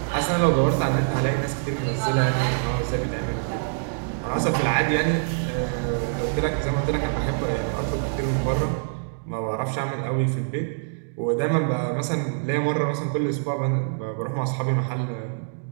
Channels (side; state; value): left; silent; digital silence